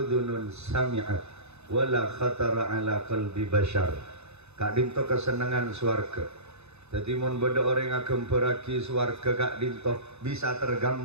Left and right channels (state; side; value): late; left; 0.80 ms